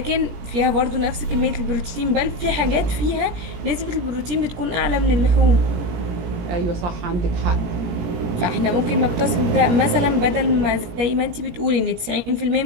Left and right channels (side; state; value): left; late; 17 ms